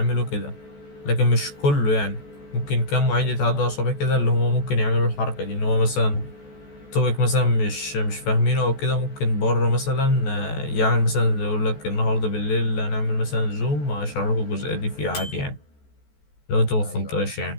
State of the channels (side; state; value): right; late; 14 ms